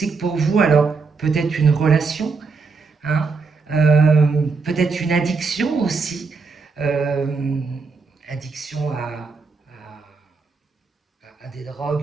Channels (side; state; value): left; quieter; 4.6 dB